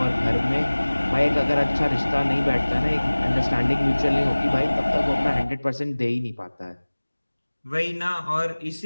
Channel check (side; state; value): both; inverted; correlation -1.00